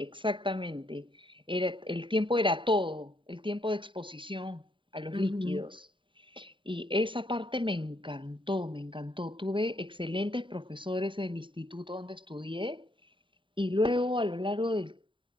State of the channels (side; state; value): left; late; 0.24 ms